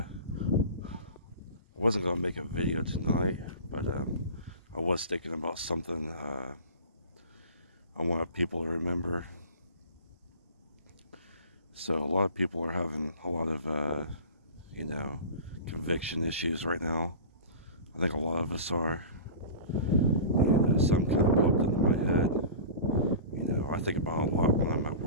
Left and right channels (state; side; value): inverted; both; correlation -0.35